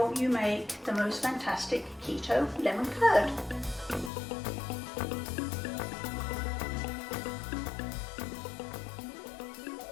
you make the most fantastic keto lemon curd.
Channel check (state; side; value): drops out; right; at 4.1 s